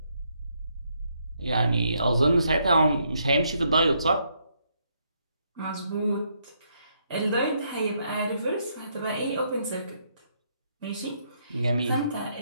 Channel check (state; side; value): inverted; both; correlation -0.75